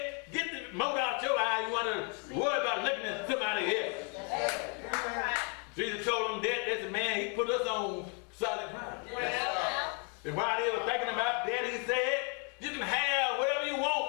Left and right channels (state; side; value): quieter; right; 36.9 dB